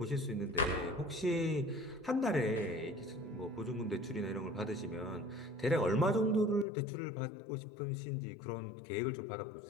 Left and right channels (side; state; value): right; drops out; at 6.7 s